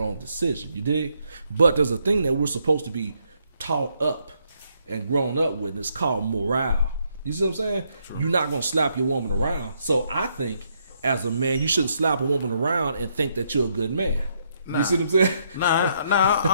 decision. You dig? But there's a thing that we're supposed to be taught up and grown up with, and it's called morale. You see what I'm saying? True. You're not going to slap your woman around. So I think, as a man, you shouldn't slap a woman around and think that you're a good man. You see what I'm saying?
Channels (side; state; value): both; inverted; correlation -0.74